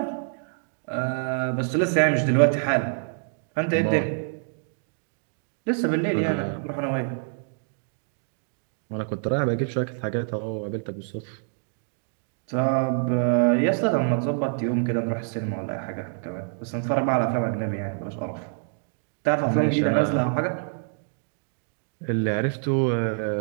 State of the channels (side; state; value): left; silent; digital silence